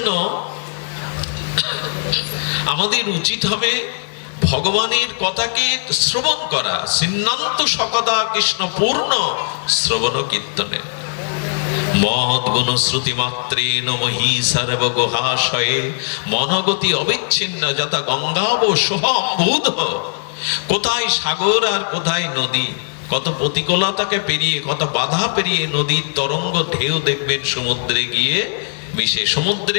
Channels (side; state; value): right; silent; 63 dB below the other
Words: আমাদের উচিত হবে ভগবানের কথাকে শ্রবণ করা। সিন্নান্ত সকদা কৃষ্ণ পূর্ণ শ্রবণ কীর্তনে মহৎ গুণ শ্রুতি মাত্রেণ মহি সর্ব গুহাশয়ে মনগতি অবিচ্ছিন্ন যথা গঙ্গাব সোহম্বুধ। কোথায় সাগর আর কোথায় নদী, কত প্রতিকূলতাকে পেরিয়ে, কত বাধা পেরিয়ে নদীর তরঙ্গ ঢেউ দেখবেন সমুদ্রে গিয়ে মিশে। সমুদ্রে